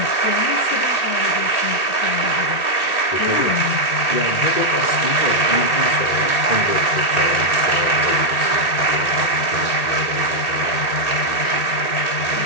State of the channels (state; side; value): late; right; 1.8 ms